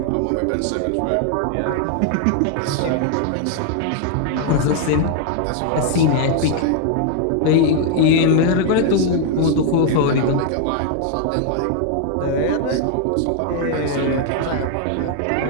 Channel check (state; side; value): different; both; correlation 0.00